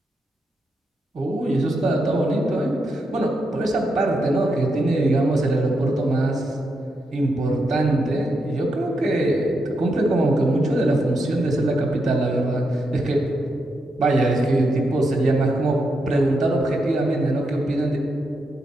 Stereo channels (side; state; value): both; normal; correlation 0.83